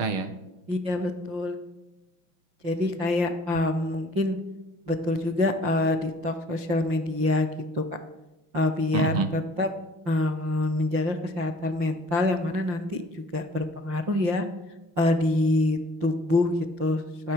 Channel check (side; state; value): left; late; 5.8 ms